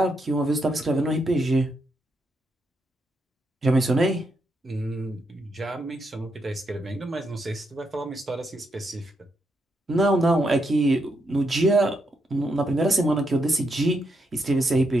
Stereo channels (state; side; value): normal; both; correlation 0.80